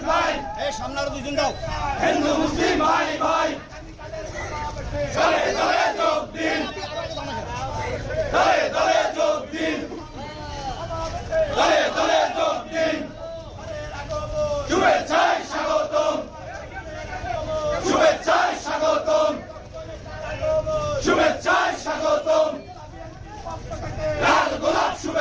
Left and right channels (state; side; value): identical; both; correlation 1.00